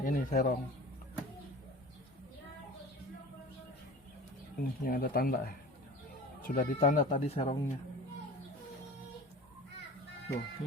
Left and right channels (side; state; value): both; normal; correlation 0.39